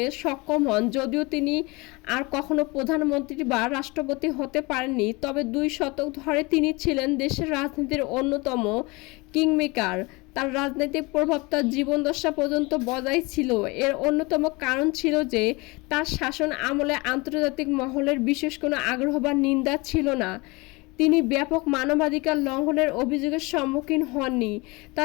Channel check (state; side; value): quieter; right; 25.3 dB